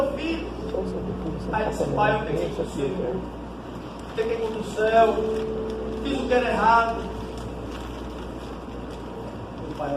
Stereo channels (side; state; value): both; identical; correlation 1.00